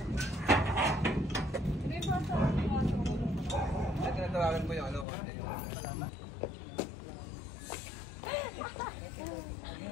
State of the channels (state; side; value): drops out; right; at 5.1 s